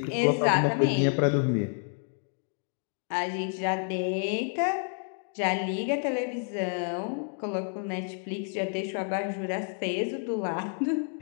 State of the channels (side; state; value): right; silent; 58 dB below the other